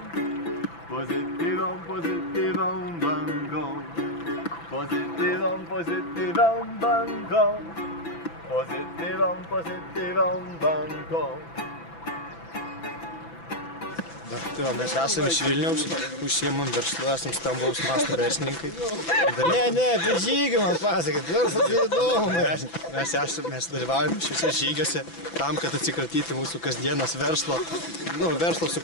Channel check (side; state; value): right; late; 6.0 ms